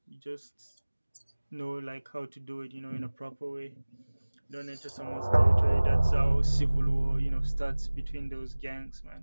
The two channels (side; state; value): both; inverted; correlation -1.00